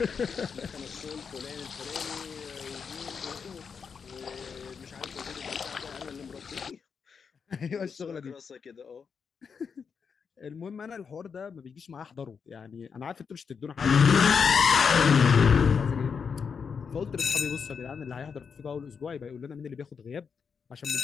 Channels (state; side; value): quieter; right; 6.1 dB